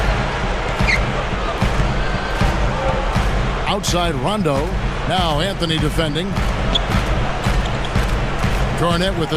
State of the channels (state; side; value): identical; both; correlation 1.00